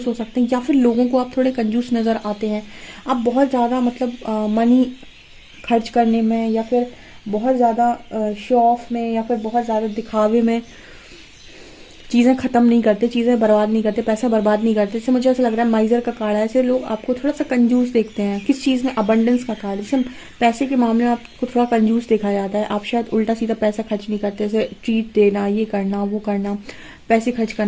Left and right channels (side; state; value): both; identical; correlation 1.00